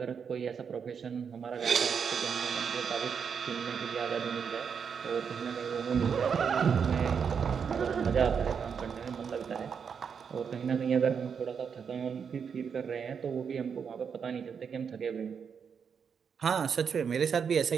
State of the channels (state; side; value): quieter; left; 6.7 dB